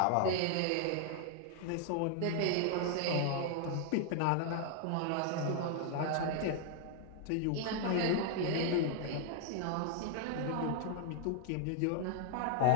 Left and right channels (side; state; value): both; different; correlation 0.00